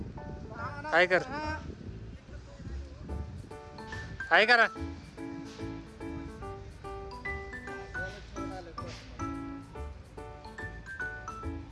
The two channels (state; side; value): identical; both; correlation 1.00